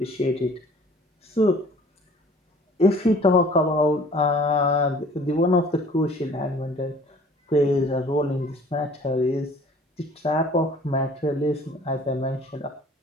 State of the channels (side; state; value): both; normal; correlation 0.51